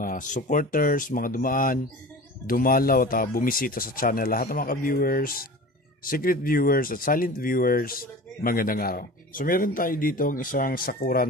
supporters, mga dumaan, dumalaw at bumisita sa channel, lahat ng mga viewers, secret viewers at silent viewers, magandang araw. So meron tayo dito ang isang Sakura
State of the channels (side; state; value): both; normal; correlation 0.37